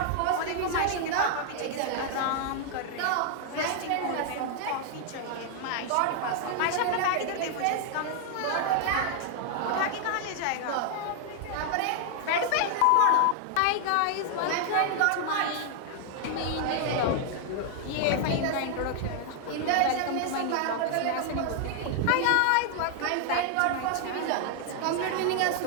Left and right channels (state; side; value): different; both; correlation 0.00